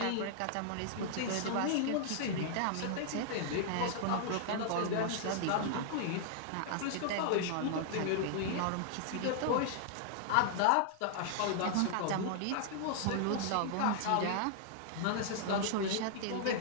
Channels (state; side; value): different; both; correlation -0.01